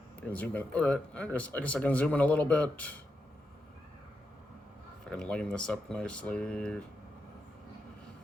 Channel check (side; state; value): both; normal; correlation 0.85